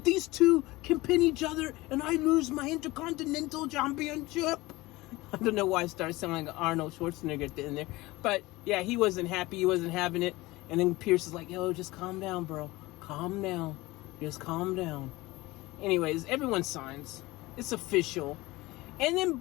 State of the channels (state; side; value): quieter; right; 20.4 dB